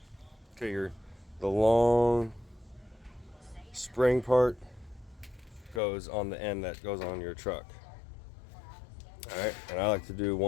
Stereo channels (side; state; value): right; drops out; at 5.8 s